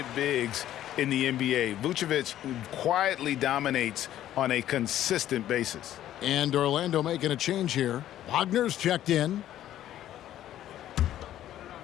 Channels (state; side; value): quieter; right; 12.4 dB